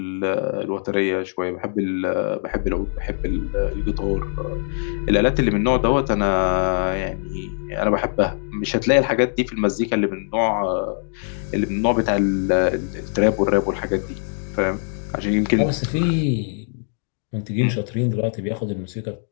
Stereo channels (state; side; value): silent; right; 60 dB below the other